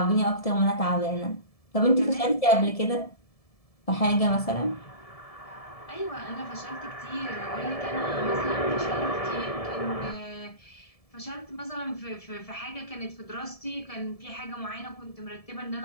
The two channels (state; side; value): late; right; 1.7 ms